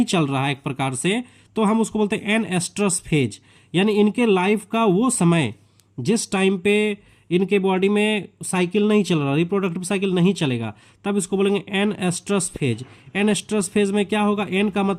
चल रहा है एक प्रकार से, तो हम उसको बोलते हैं एन एस्ट्रस फेज, यानी इनके लाइफ का वो समय जिस टाइम पे इनके बॉडी में साइकिल नहीं चल रहा, रिप्रोडक्टिव साइकिल नहीं चलेगा, तब इसको बोलेंगे anestrus phase. Anestrus phase में क्या होगा, एन का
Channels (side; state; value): both; identical; correlation 1.00